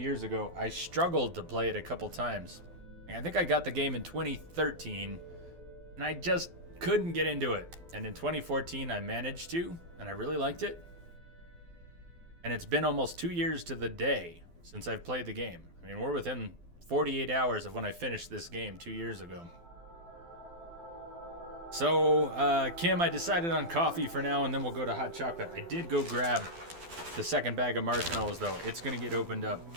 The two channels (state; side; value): late; left; 12 ms